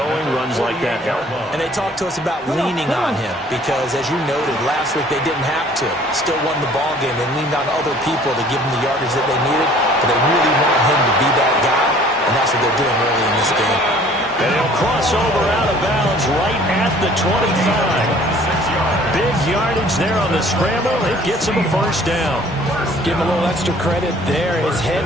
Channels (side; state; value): both; normal; correlation 0.53